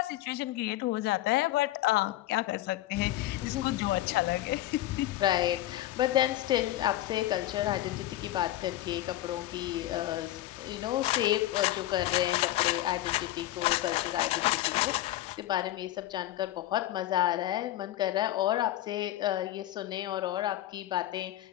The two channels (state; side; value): quieter; right; 14.9 dB